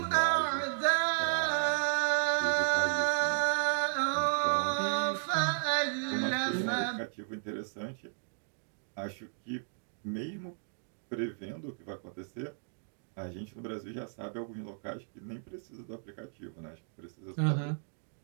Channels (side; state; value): left; silent; digital silence